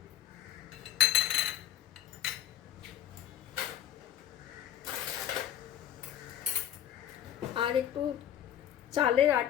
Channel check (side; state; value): right; quieter; 11.1 dB